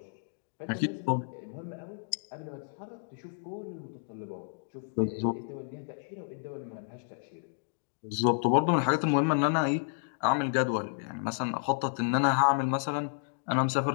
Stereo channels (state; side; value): silent; right; digital silence